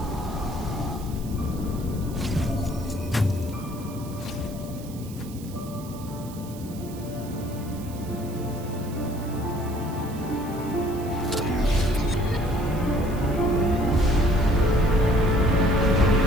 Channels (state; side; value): noise; right; hiss, 19 dB below the sound